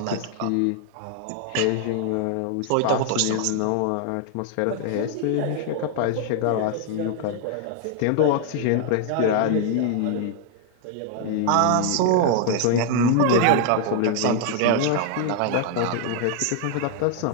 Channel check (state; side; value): different; both; correlation 0.00